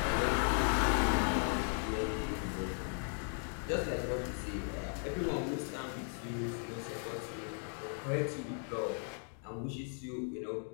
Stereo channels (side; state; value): right; silent; 53 dB below the other